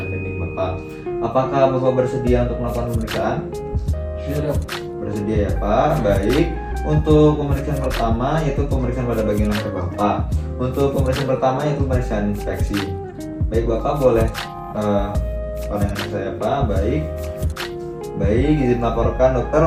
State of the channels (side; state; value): both; identical; correlation 1.00